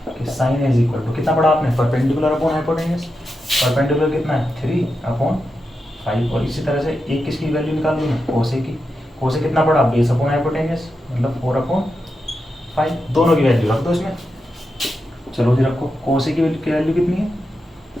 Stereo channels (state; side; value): normal; both; correlation 0.88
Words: कि साइन इज इक्वल टू कितना पढ़ा आपने परपेंडिकुलर अपॉन हाइपोटेन्यूस। परपेंडिकुलर कितना है 3/5, और इसी तरह से एक किसकी वैल्यू निकाल लूँ मैं कोसे की। कोसे कितना पड़ा बेस अपॉन हाइपोटेन्यूस मतलब 4/5, दोनों की वैल्यू रख दो इसमें। चलो जी रखो, कोसे की वैल्यू कितनी है